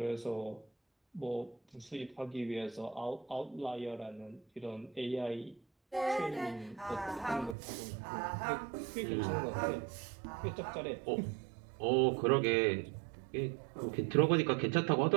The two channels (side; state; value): left; drops out; at 7.6 s